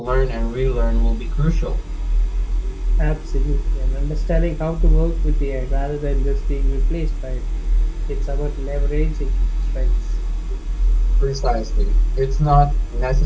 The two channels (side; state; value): both; identical; correlation 1.00